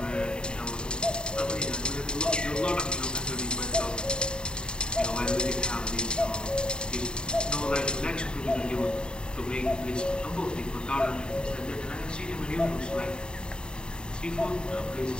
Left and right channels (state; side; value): late; right; 0.049 ms